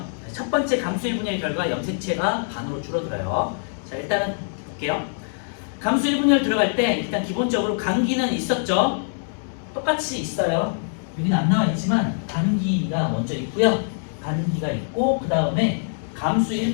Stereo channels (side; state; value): right; silent; digital silence